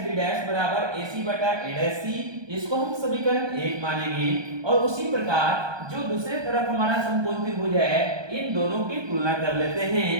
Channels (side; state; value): left; late; 1.2 ms